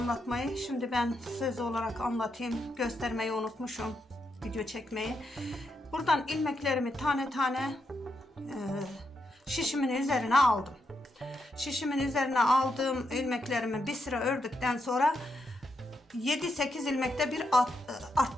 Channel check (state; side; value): normal; both; correlation 0.82